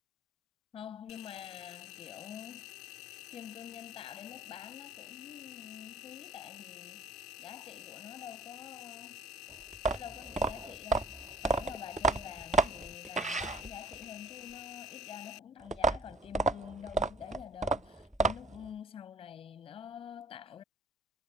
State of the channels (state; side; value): normal; both; correlation 0.52